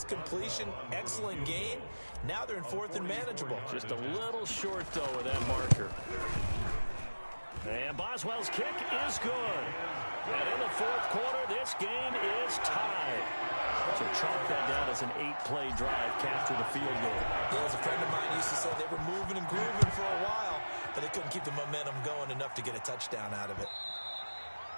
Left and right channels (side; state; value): both; inverted; correlation -1.00